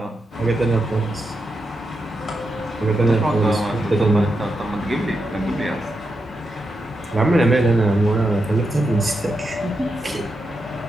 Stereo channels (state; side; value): normal; both; correlation 0.86